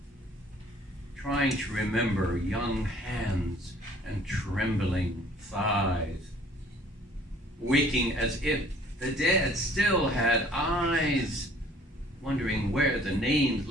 Trying to remember young hands and trembling thighs. Waking as if the dead still had eyes, wondering where the names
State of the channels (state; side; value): normal; both; correlation 0.55